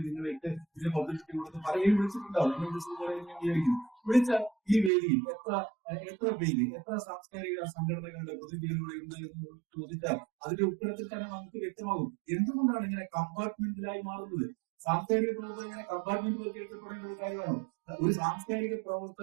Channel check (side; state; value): left; drops out; at 4.9 s